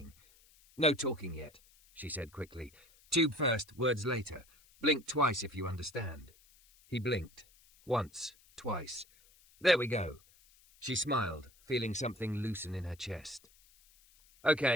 "No talking yet," she said quickly. "Tube first, words later. Blink twice if you understand." He blinked. Once, twice. "There we go." She smiled, feeling something loosen in her chest.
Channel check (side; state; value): left; noise; hiss, 28 dB below the sound